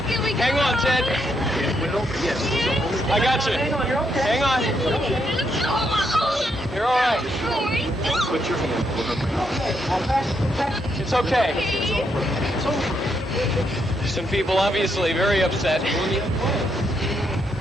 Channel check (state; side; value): normal; both; correlation 0.77